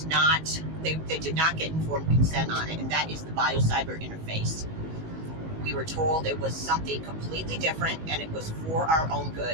not, they did not get informed consent on it, and that is the biocyber interface. We were told it was something completely different and it was for our own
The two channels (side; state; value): left; late; 19 ms